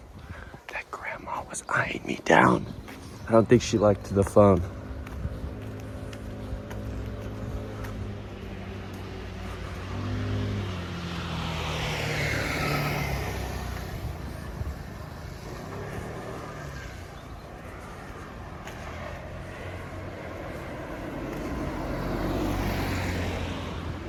That grandma was eyeing me down. I don't think she liked the phone.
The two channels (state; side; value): identical; both; correlation 1.00